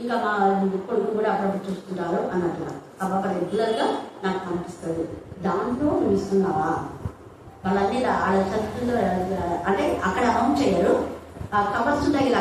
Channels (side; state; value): both; identical; correlation 1.00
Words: ఇంకా మా కొడుకు కూడా అప్పుడప్పుడు చూస్తుంటారు అన్నట్లుగా. ఆ పాప రెగ్యులర్గా నాకు కనిపిస్తుంది. దాంట్లో నువ్వు ఇస్తున్నావా? వాళ్ళన్నీ వాళ్ళ చదువుతుందో అంటే అక్కడ అమౌంట్ చేయరు, కవర్స్ ఉంటాయి ఇలా